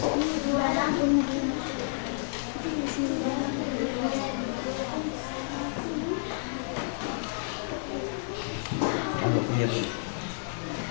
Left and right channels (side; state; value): right; silent; 58 dB below the other